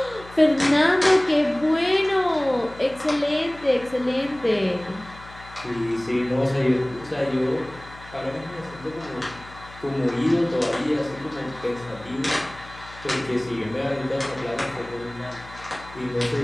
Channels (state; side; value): noise; left; hum, 19 dB below the sound